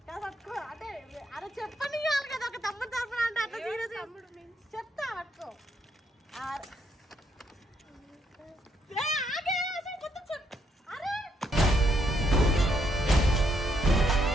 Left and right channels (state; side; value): normal; both; correlation 0.75